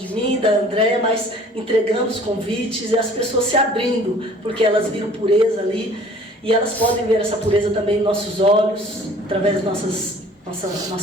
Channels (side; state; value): both; normal; correlation 0.51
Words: mim, da Andréia, mas entregando os convites e as pessoas se abrindo, porque elas viram pureza ali, e elas podem ver essa pureza também em nossos olhos, através da